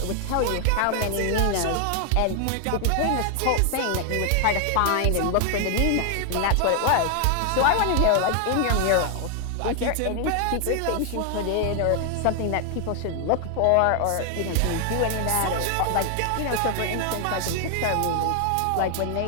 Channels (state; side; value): different; both; correlation 0.00